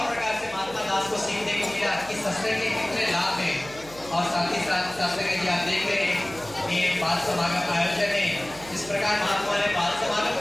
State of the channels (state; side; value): noise; right; hum, 19 dB below the sound